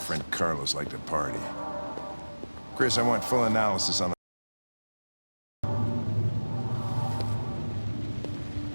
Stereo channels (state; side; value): inverted; both; correlation -1.00